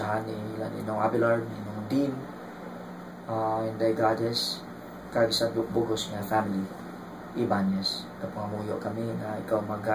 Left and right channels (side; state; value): both; identical; correlation 1.00